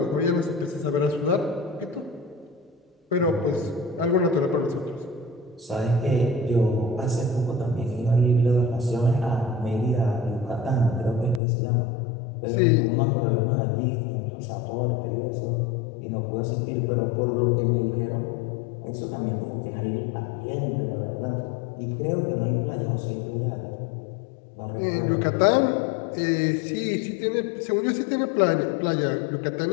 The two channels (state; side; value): drops out; right; at 11.4 s